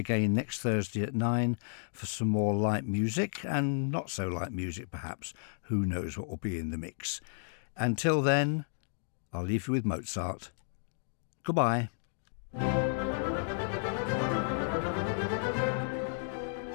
next Thursday at 9 for some more light music, and not so light music perhaps. Who knows what will be in the mix. Until then, I'll leave you with Mozart. Goodbye.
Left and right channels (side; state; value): right; silent; digital silence